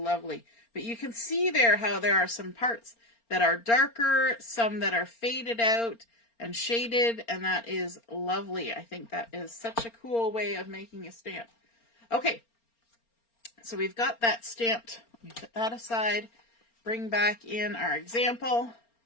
But you can see there how there are some parts that are darker, some that are faded out and shaded, and that is lovely. I think that is such a cool way of making a stamp. Okay, so we've got that stamped. Let me put that aside. Bring back in our example.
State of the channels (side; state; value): right; late; 4.3 ms